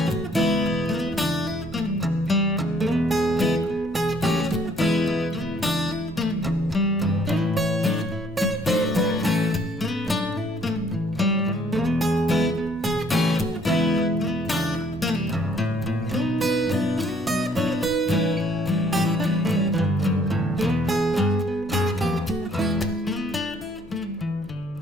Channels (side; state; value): left; noise; hum, 23 dB below the sound